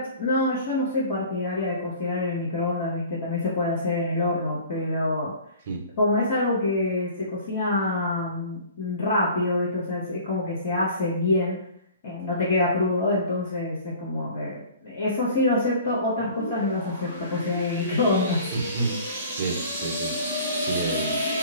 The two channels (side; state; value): both; inverted; correlation -0.45